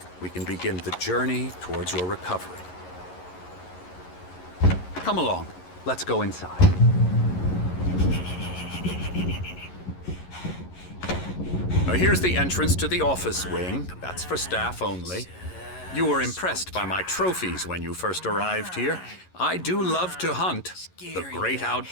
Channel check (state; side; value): late; right; 11 ms